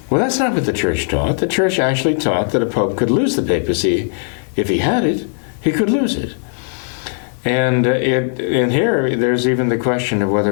Well, that's not what the Church taught. The Church actually taught that a Pope could lose the papacy. If he had it, he could lose it. And in here, there's even the question of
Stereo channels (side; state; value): right; silent; digital silence